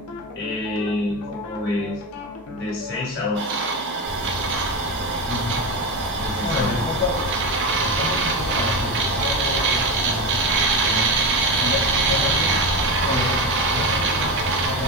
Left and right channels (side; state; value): both; normal; correlation 0.18